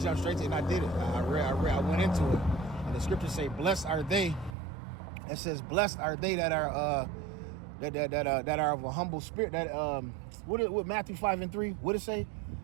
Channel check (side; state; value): left; drops out; at 4.5 s